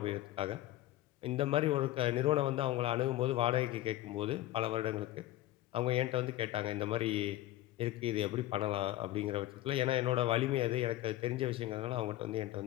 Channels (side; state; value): right; quieter; 15.5 dB